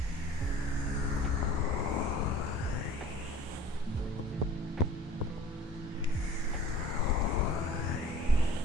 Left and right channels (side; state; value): both; normal; correlation 0.46